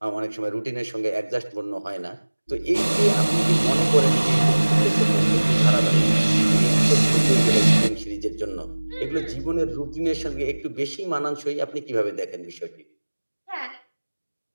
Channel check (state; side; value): inverted; both; correlation -1.00